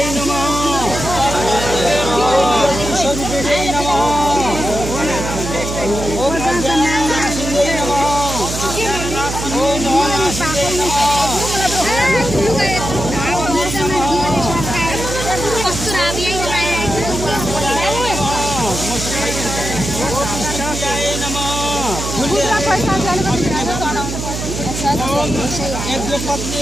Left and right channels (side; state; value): right; noise; hum, 5 dB below the sound